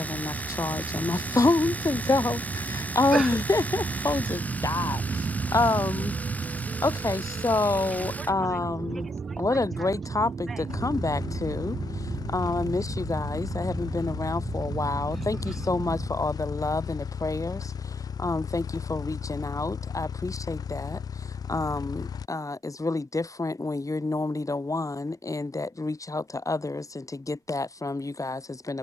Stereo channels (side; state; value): both; normal; correlation 0.77